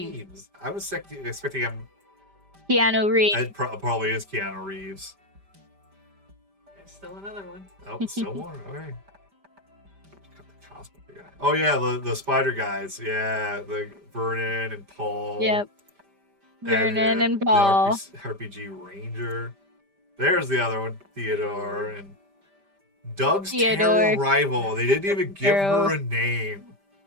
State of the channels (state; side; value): late; left; 5.1 ms